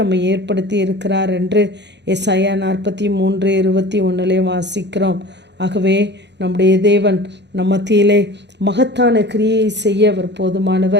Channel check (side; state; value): left; late; 0.51 ms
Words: ஏற்படுத்தி இருக்கிறார் என்று ஏசாயா 43:21 வாசிக்கிறோம். ஆகவே நம்முடைய தேவன் நம் மத்தியிலே மகத்தான கிரியை செய்ய அவர்